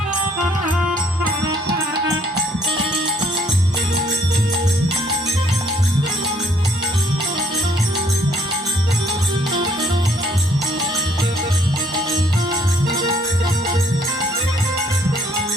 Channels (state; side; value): normal; both; correlation 0.65